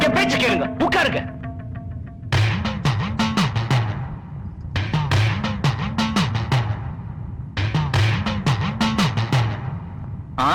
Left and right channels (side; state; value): both; identical; correlation 1.00